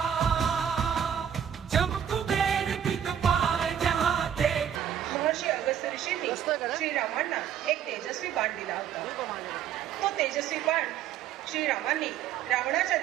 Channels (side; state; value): left; quieter; 9.1 dB